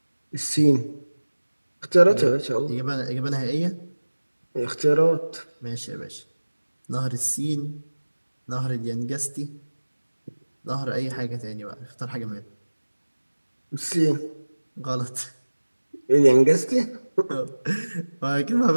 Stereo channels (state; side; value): inverted; both; correlation -1.00